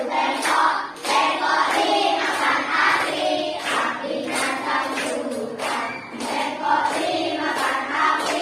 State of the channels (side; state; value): both; identical; correlation 1.00